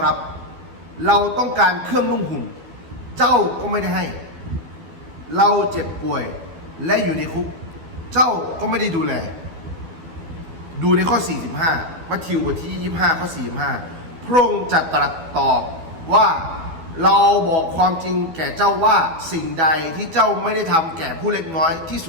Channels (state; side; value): late; left; 12 ms